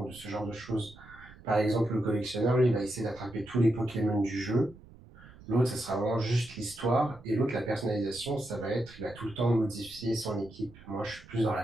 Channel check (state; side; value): noise; right; rumble, 21 dB below the sound